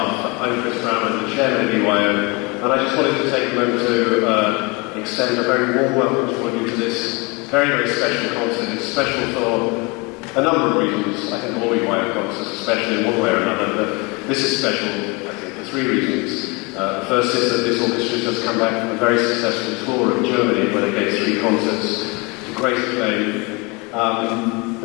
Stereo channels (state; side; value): quieter; right; 28.2 dB